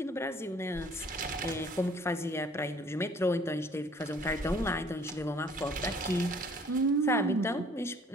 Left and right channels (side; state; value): both; normal; correlation 0.56